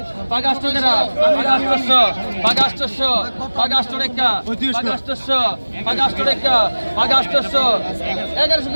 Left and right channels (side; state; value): both; inverted; correlation -1.00